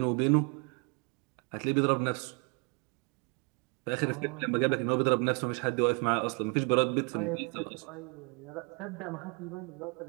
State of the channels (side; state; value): left; quieter; 33.8 dB